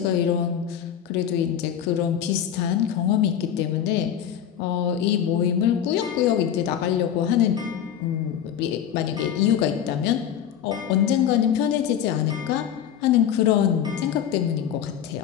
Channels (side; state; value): right; quieter; 9.4 dB